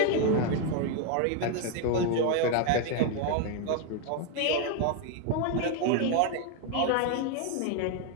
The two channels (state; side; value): different; both; correlation 0.01